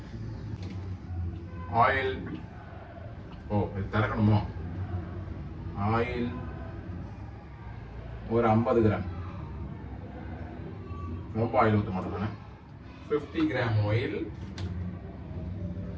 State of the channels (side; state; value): both; identical; correlation 1.00